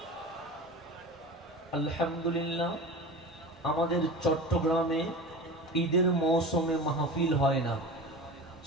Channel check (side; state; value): both; normal; correlation 0.32